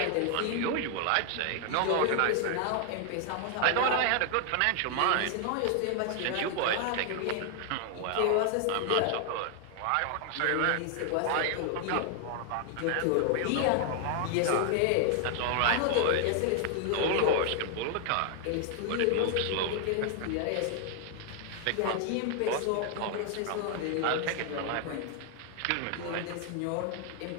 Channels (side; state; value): both; different; correlation 0.00